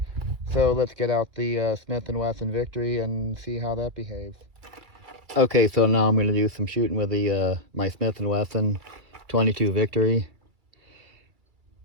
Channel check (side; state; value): left; late; 2.3 ms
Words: so let's get out the Smith & Wesson Victory and see how that behaves. Okay, so now I'm going to do some shooting with the my Smith & Wesson 22 Victory.